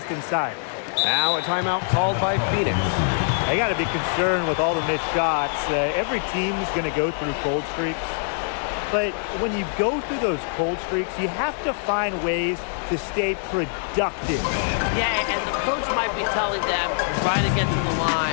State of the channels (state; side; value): silent; right; digital silence